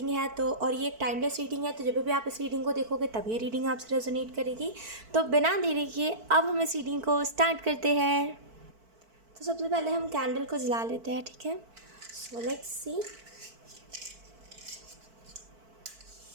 है तो और ये एक टाइमलेस रीडिंग है, तो जब भी आप इस रीडिंग को देखोगे तब ये रीडिंग आपसे रेजोनेट करेगी. तो बिना देरी किए अब हम इस रीडिंग को स्टार्ट करते हैं. तो सबसे पहले हम कैंडल को जला लेते हैं. ठीक है. So let's see.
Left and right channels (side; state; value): left; late; 4.5 ms